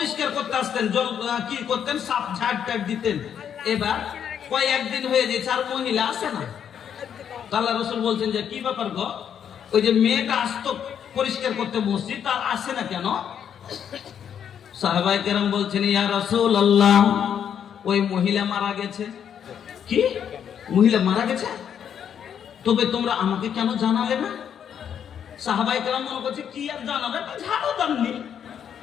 করতে আসতেন, জল কি করতেন, সাফ ঝাড় টাড় দিতেন। এবার কয়েকদিন হয়ে গেছে আর মহিলা আসে না। আল্লাহ রসুল বলছেন যে কি ব্যাপার গো, ওই যে মেয়েটা আসতো পরিষ্কার করতে মসজিদ, তার আসে না কেন? সাহাবায়ে কেরাম বলছেন, ইয়া রাসূলুল্লাহ, ওই মহিলা মারা গেছে। কি? মহিলা মারা গেছে? তবে তোমরা আমাকে কেন জানালে না? সাহাবায়ে কেরাম মনে করছে কি আর জানাবে, ঝাড়ু দাননি।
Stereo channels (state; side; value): quieter; right; 8.6 dB